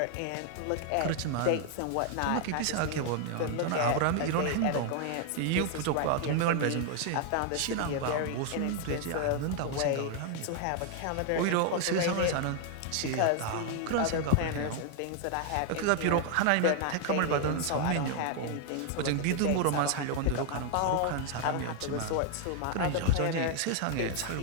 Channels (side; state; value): both; different; correlation 0.00